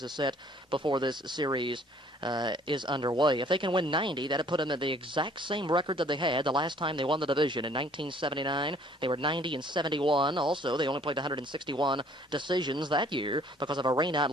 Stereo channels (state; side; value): normal; both; correlation 0.58